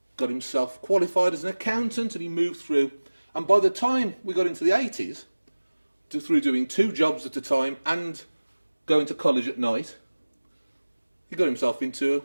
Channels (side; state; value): both; inverted; correlation -1.00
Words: got himself qualified as an accountant, and he moved through. And by the time we got into the 80s, through doing 2 jobs at a time and going to college at night, he got himself into